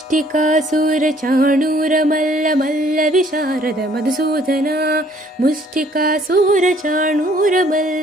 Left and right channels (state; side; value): normal; both; correlation 0.61